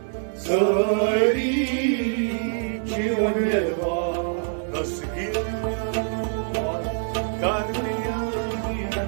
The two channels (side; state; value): left; silent; 62 dB below the other